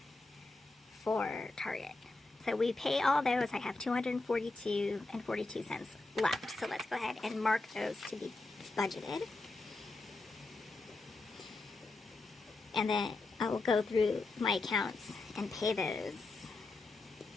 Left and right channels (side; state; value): right; quieter; 3.3 dB